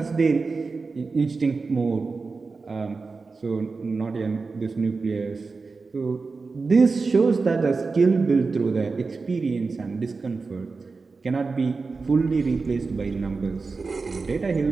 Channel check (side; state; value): left; quieter; 4.3 dB